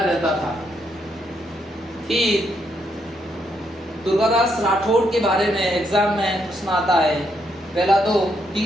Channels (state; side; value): normal; both; correlation 0.77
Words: रहता था। फिर दुर्गादास राठौड़ के बारे में एग्जाम में प्रश्न आता है। पहला तो